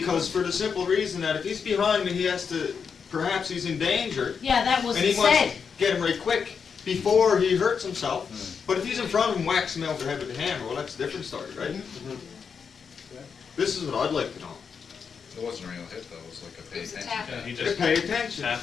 for the simple reason that if he's behind me, he has to, perhaps he's in danger, Yeah, that was and he said. wants to get him right quick before he hurts himself. But if he's in front of him, whacks him over the head with the hammer, well, that's a different story, right? Mhm. This is what I'd like to know. It wasn't a real hit though, it was like a It pay was a attention. tap. Yeah, he To just, pay attention.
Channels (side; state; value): right; quieter; 6.2 dB